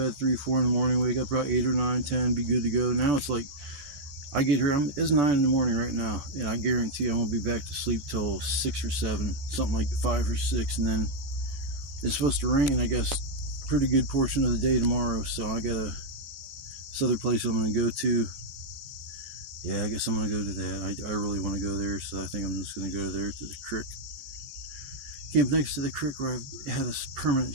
at 3, 4 in the morning, wake up about 8 or 9, 10, be good to go. Now it's like, I get here, it's 9 in the morning right now, and I guarantee I won't be back to sleep till 6 or 7, something like 5 or 6, and then it's supposed to rain, I guess, pretty good portion of the day tomorrow, so I got this other place I'm going to go to. Yeah, I guess I'm going to go to that. I really want to go there, so I think I'm just going to go there to the creek. Camp next to the creek where I had a permanent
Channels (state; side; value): late; left; 15 ms